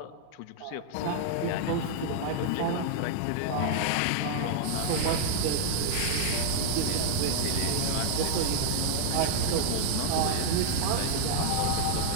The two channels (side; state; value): both; different; correlation -0.01